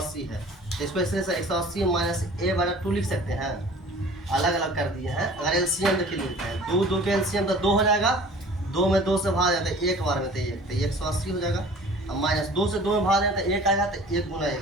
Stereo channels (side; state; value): both; normal; correlation 0.46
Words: है, तो इसको ऐसे 180 माइनस ए बटा 2 लिख सकते हैं, अलग अलग कर दिए हैं। अगर एलसीएम देखिए लिखते हैं, 2 के एलसीएम तो 2 हो जाएगा, 2 में 2 से भाग जाता है, एक बार में तो 1, तो 180 हो जाएगा। अब माइनस 2 से 2 में भाग जाता है, 1 आएगा, तो 1 गुना 1,